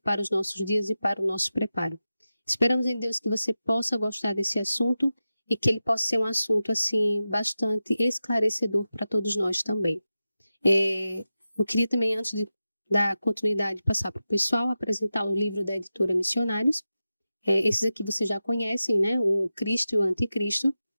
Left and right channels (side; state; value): both; inverted; correlation -0.93